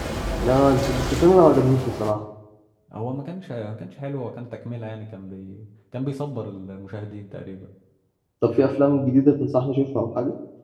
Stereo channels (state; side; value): identical; both; correlation 1.00